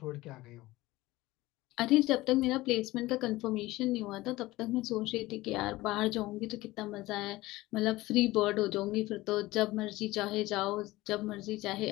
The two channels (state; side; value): quieter; right; 18.7 dB